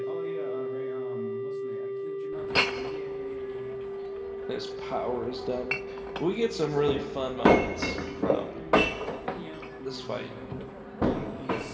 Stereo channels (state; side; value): identical; both; correlation 1.00